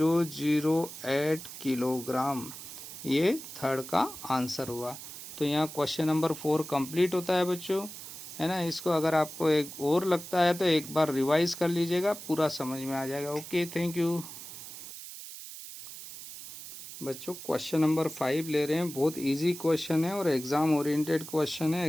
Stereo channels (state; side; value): noise; right; hiss, 12 dB below the sound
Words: किलोग्राम। ये थर्ड का आंसर हुआ। तो यहाँ क्वेश्चन नंबर 4 कंप्लीट होता है बच्चों, है ना। इसको अगर आपको एक और लगता है तो एक बार रिवाइज कर लीजिएगा, पूरा समझ में आ जाएगा। Okay, thank you. बच्चों क्वेश्चन नंबर 5 ले रहे हैं। बहुत इजी क्वेश्चन है और एग्ज़ाम ओरिएंटेड क्वेश्चन है।